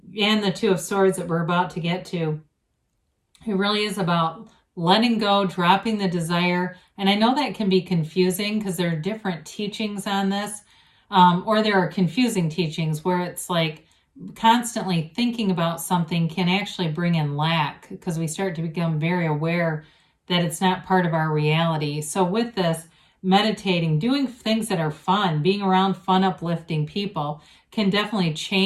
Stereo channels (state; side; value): identical; both; correlation 1.00